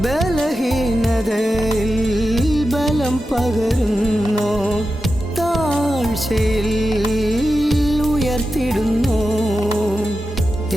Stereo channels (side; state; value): both; normal; correlation 0.91